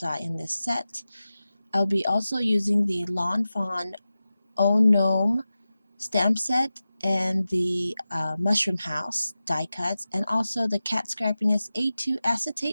in this set. I'll be also using the Fawn Gnome stamp set and the Mushroom House die cuts, and also the Cat Scrappiness A2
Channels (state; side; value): inverted; both; correlation -0.94